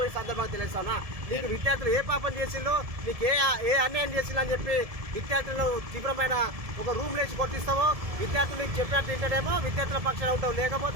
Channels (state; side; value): late; left; 1.7 ms